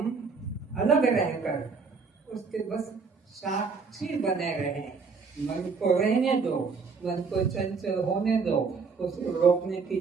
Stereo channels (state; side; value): quieter; left; 5.0 dB